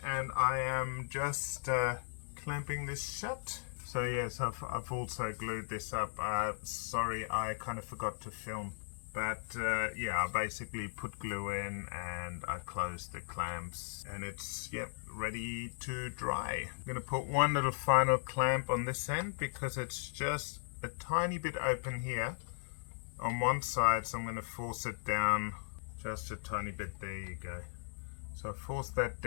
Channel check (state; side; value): silent; right; digital silence